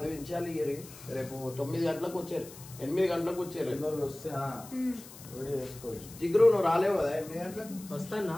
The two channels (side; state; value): left; noise; hiss, 17 dB below the sound